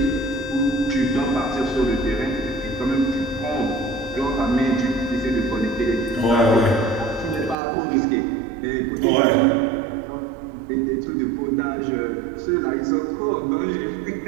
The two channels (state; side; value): drops out; left; at 7.6 s